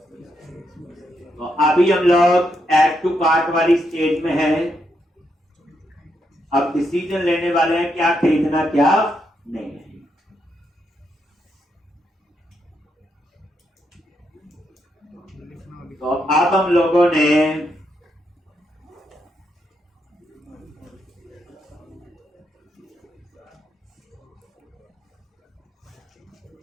तो अभी हम लोग ऐड टू कार्ट वाली स्टेज में है। अब डिसीजन लेने वाले हैं क्या खरीदना क्या नहीं है। तो अब हम लोगों ने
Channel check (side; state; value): both; normal; correlation 0.80